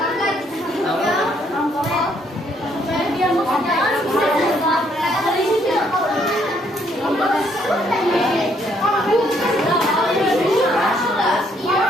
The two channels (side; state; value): both; normal; correlation 0.69